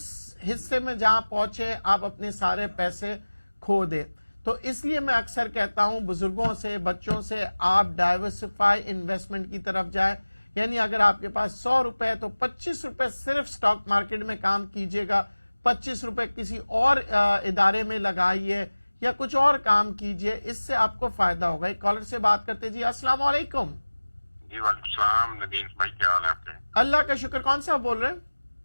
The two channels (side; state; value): both; inverted; correlation -1.00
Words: حصے میں جہاں پہنچے آپ اپنے سارے پیسے کھو دیں۔ تو اس لیے میں اکثر کہتا ہوں بزرگوں سے، بچوں سے، آپ ڈائیورسفائی انویسٹمنٹ کی طرف جائیں، یعنی اگر آپ کے پاس 100 روپے تو 25 روپے صرف سٹاک مارکیٹ میں کام کیجئے گا، 25 روپے کسی اور ادارے میں لگائیے یا کچھ اور کام کیجئے، اس سے آپ کو فائدہ ہوگا۔ ایک کالر سے بات کرتے جی، السلام علیکم۔ جی وعلیکم السلام ندیم بھائی، کیا حال ہے آپ کے؟ اللہ کا شکر، کون صاحب بول رہے ہیں؟